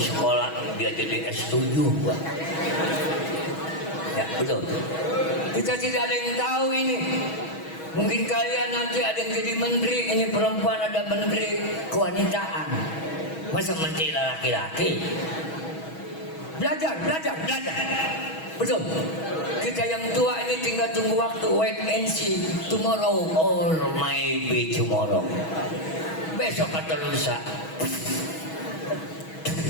dia jadi S7 gua. Ya betul. Kita tidak ada yang tahu ini. Mungkin kalian nanti ada yang jadi menteri, ini perempuan ada menteri kewanitaan. Masa menteri laki-laki? Belajar. Betul. Kita yang tua ini tinggal tunggu waktu, wait and see, tomorrow or maybe tomorrow. Besok atau lusa.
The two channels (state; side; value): late; right; 6.2 ms